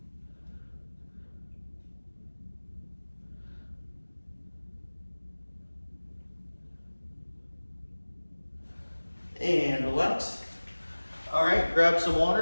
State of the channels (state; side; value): inverted; both; correlation -1.00